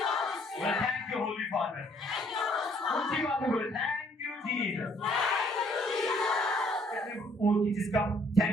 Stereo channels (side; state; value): both; normal; correlation 0.63